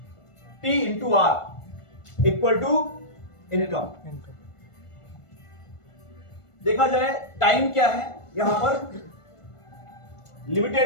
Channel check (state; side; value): late; right; 1.5 ms